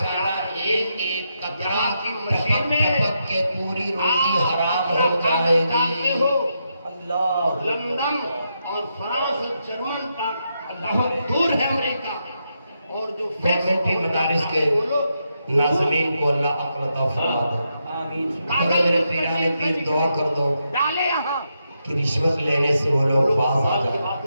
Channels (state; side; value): inverted; both; correlation -0.83